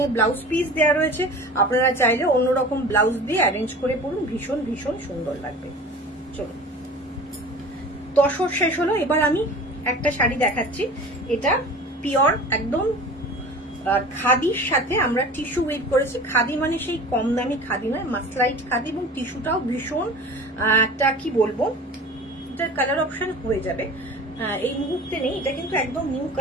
এ ব্লাউজ পিস দেওয়া রয়েছে, আপনারা চাইলে অন্যরকম ব্লাউজ দিয়ে অ্যারেঞ্জ করে পরুন, ভীষণ ভীষণ সুন্দর লাগবে। চলো, তসর শেষ হলো, এবার আমি একটা শাড়ি দেখাচ্ছি। এটা পিওর একদম খাদির সাথে আমরা টিস্যু ওয়েভ করেছি। খাদি মানে সেই কম দামি খাদি নয়, মাসলাইট খাদি, এবং টিস্যুটাও ভীষণ একটা কি বলবো, এটার কালার অপশন হয়ে যাবে, এই মুহূর্তে নেই, এটা কিন্তু একদম নিউ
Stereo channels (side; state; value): both; normal; correlation 0.39